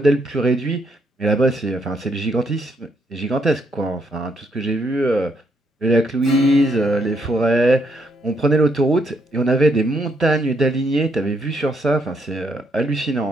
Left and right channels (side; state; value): both; normal; correlation 0.74